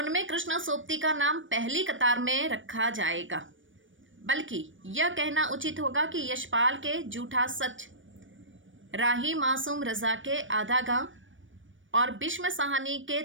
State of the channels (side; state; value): left; late; 0.56 ms